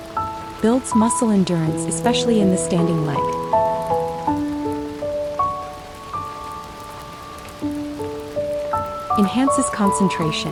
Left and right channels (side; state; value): both; identical; correlation 1.00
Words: Builds muscle endurance, especially in the standing leg. Enhances